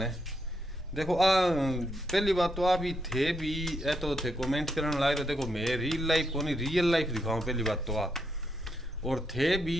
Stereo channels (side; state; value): both; normal; correlation 0.79